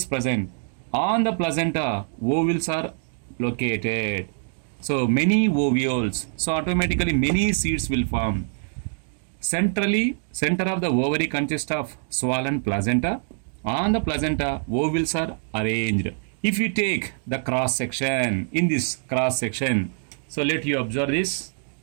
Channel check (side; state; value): left; silent; digital silence